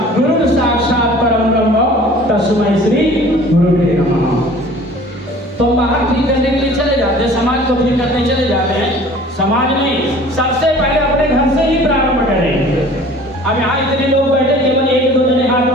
गुरुर साक्षात परम ब्रह्म तस्मै श्री गुरुवे नमः। तो बाहर ठीक करने के लिए चले जाते हैं, समाज को ठीक करने चले जाते हैं। समाज नहीं, सबसे पहले अपने घर से ही प्रारंभ करें। अब यहाँ इतने लोग बैठे, केवल 1-2 जने हाथ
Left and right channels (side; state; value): both; normal; correlation 0.47